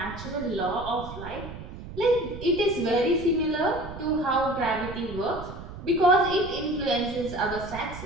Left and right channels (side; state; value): right; noise; rumble, 12 dB below the sound